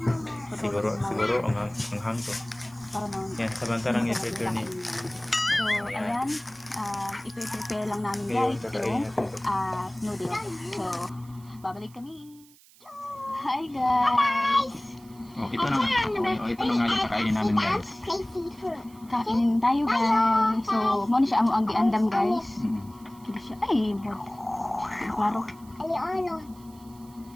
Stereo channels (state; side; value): noise; right; hiss, 26 dB below the sound